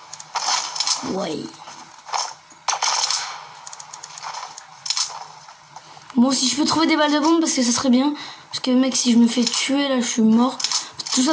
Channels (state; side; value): identical; both; correlation 1.00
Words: Ouais. Bon, si je peux trouver des balles de bombe, parce que ça serait bien. Parce que mec, si je me fais tuer, là, je suis mort. Tout